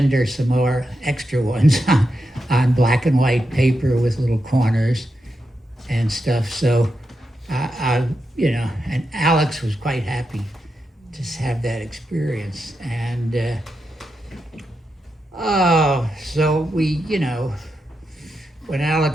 her some more extra ones on black and white paper with little corners and stuff. So, and Alex was quite happy to have that experience. And, so we, when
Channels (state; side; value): normal; both; correlation 0.86